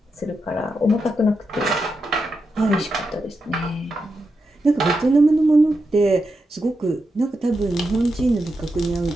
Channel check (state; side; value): normal; both; correlation 0.87